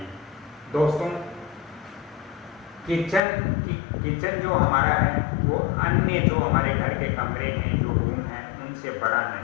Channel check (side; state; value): right; drops out; at 3.2 s